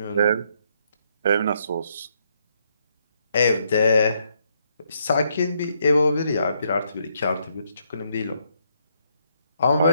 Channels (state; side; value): inverted; both; correlation -0.74